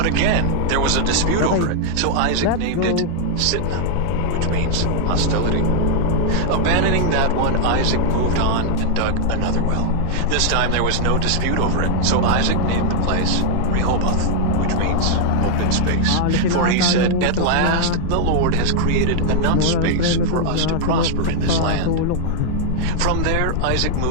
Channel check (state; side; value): different; both; correlation 0.00